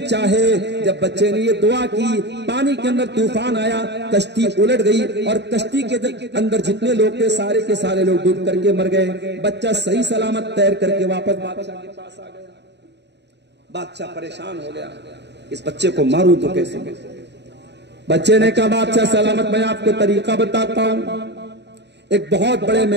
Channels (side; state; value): left; late; 0.50 ms